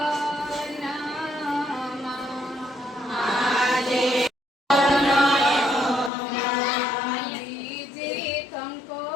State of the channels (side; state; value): right; drops out; at 6.1 s